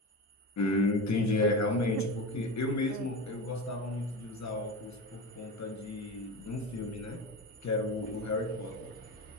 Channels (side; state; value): both; normal; correlation 0.25